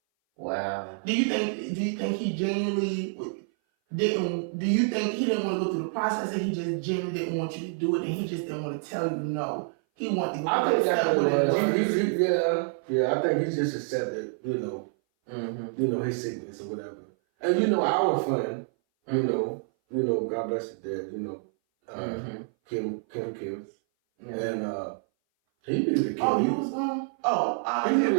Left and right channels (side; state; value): left; silent; 58 dB below the other